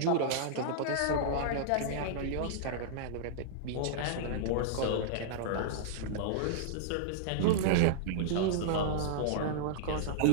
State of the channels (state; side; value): different; both; correlation -0.02